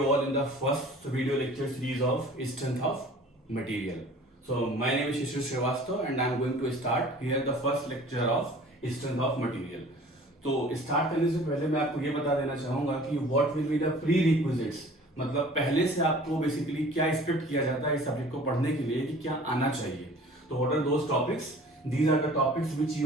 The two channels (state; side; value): normal; both; correlation 0.47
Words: all in the first video lecture series of Strength of Material. So, my name is Shishir Srivastava and I am going to start here the first lecture of Strength of Material. तो start करने से पहले मैं आपको ये बता देना चाहूंगा कि what will be the pre requisites, मतलब पहले से आपको बेसिकली क्या एक्सपेक्ट किया जाता है इस सब्जेक्ट को पढ़ने के लिए कि क्या आना चाहिए. तो what are those topics? These are the topics which